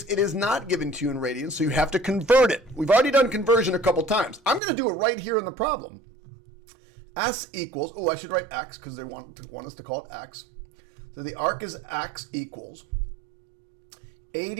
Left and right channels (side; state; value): left; drops out; at 4.6 s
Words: it is not given to you in radians, so you have to convert it. We've already done conversion a couple times. I'm going to do it right here in the problem. S equals, I should write X because they want us to call it X. So the arc is X equals